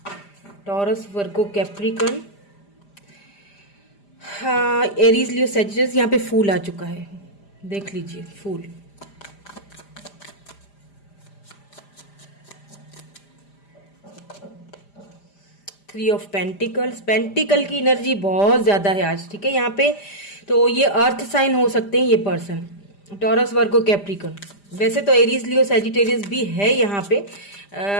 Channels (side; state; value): right; late; 5.0 ms